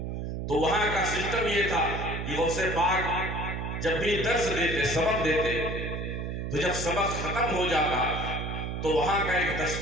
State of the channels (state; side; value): noise; right; hum, 4 dB below the sound